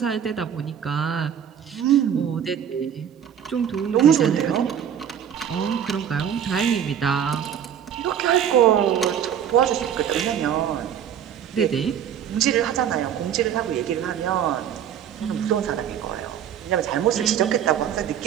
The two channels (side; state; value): left; quieter; 9.1 dB